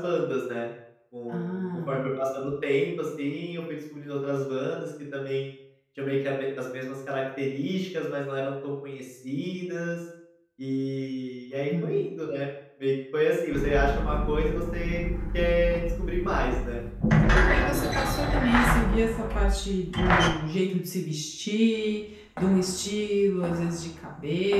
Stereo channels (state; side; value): identical; both; correlation 1.00